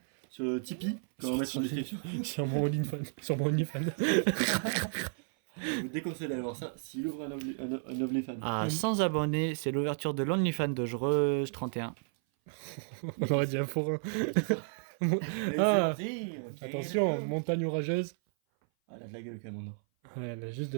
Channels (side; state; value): left; silent; 56 dB below the other